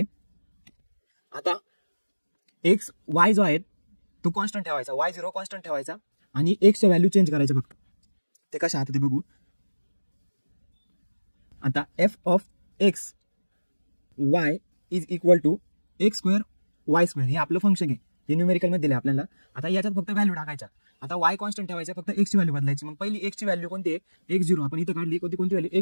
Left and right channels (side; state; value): both; inverted; correlation -1.00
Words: आता एक्स वाय जो आहे तो कॉन्स्टंट ठेवायचा, y0 कॉन्स्टंट ठेवायचा आणि एक्सच्या व्हॅल्यू चेंज करायचे फक्त. ते कसे आता ते बघू. आता f of x y is equal to x square y square, हे आपलं फंक्शन आहे, हे न्यूमेरिकल मध्ये दिले आपल्याला. आता याच्यात फक्त व्हॅल्यू टाकायच्या. आता y कॉन्स्टंट ठेवायचा, फक्त एक्सची व्हॅल्यू बदलायची. मग पहिली एक्सची व्हॅल्यू कोणती आहे, x0. आपण इथं काढली कोणती व्हॅल्यू,